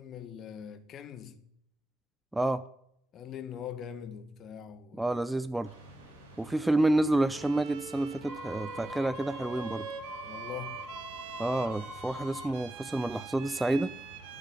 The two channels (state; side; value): normal; both; correlation 0.91